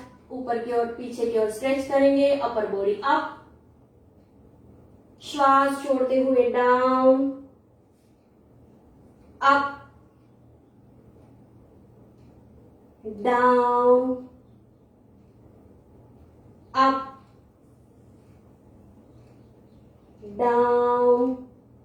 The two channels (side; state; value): both; identical; correlation 1.00